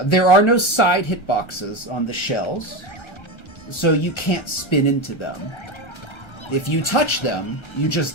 are no side hitboxes on the shells, so you can't spin into them. If you touch them, you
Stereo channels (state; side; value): late; right; 1.3 ms